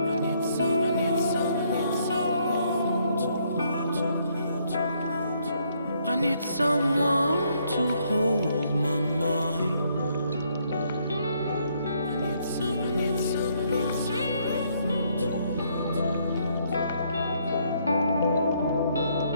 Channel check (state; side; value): inverted; both; correlation -0.70